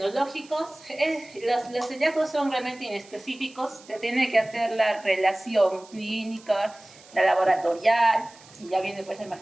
los hallazgos son realmente inespecíficos. Se tiene que hacer la relación clínica, la laboratorial, y ya viene pues la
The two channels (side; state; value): right; noise; hiss, 23 dB below the sound